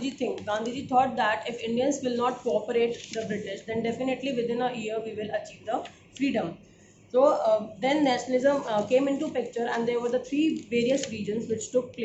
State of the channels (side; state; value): both; identical; correlation 1.00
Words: think? Gandhiji thought that if Indians will not cooperate the British, then definitely within a year we will achieve the freedom. So then nationalism came into picture, and there were the three various regions which took